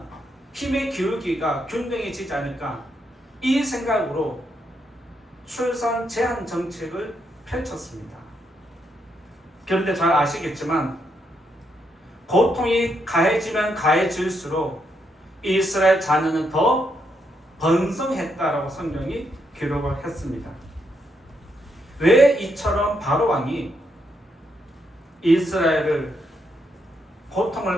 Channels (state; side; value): normal; both; correlation 0.78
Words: 힘의 기울기가 균등해지지 않을까, 이 생각으로 출산 제한 정책을 펼쳤습니다. 그런데 잘 아시겠지만 고통이 가해지면 가해질수록 이스라엘 자녀는 더 번성했다라고 성경이 기록을 했습니다. 왜 이처럼 바로 왕이 이스라엘을